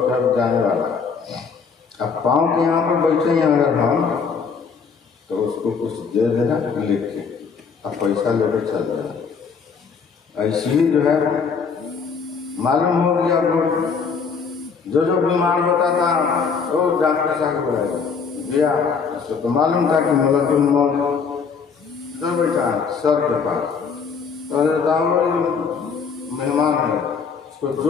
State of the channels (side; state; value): right; quieter; 5.7 dB